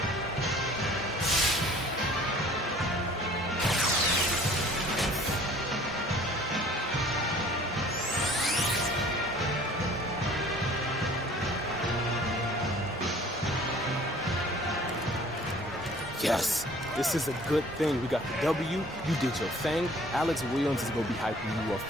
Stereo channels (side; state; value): both; normal; correlation 0.51